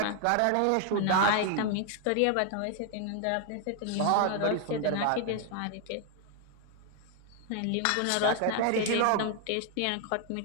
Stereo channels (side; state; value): both; different; correlation 0.01